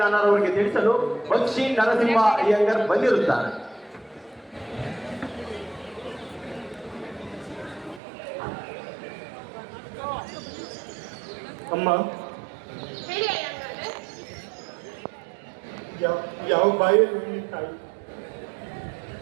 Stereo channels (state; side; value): drops out; left; at 8.0 s